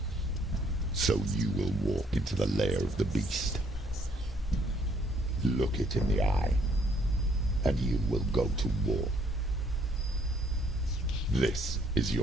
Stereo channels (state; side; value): normal; both; correlation 0.65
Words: So you will walk into the lair of the beast. Look it in the eye, and you will go to war. This is